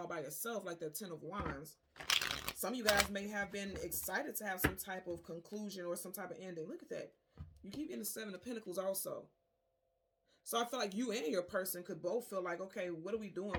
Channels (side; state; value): both; identical; correlation 1.00